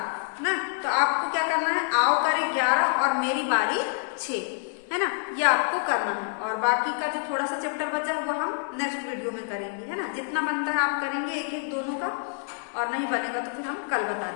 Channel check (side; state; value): right; silent; digital silence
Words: ना। तो आपको क्या करना है, आओ करें 11 और मेरी बारी 6, है ना। ये आपको करना है और बाकी का जो थोड़ा सा चैप्टर बचा है वो हम नेक्स्ट वीडियो में करेंगे, है ना। जितना बनता है आप करेंगे एक एक दोनों का, और नहीं बनेगा तो फिर हम कल बता